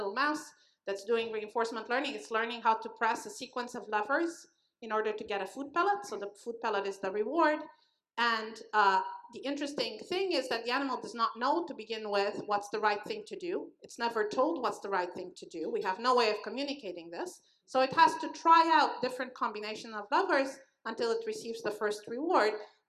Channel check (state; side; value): identical; both; correlation 1.00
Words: mouse that's doing reinforcement learning. It's learning how to press a sequence of levers in order to get a food pellet. So the food pellet is the reward. And the interesting thing is that the animal does not know to begin with what's the right thing to do. It's never told what's the right thing to do. We have no way of communicating this. So it has to try out different combinations of levers until it receives the first reward.